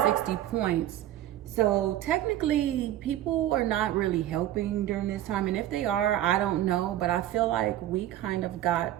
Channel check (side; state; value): left; quieter; 13.1 dB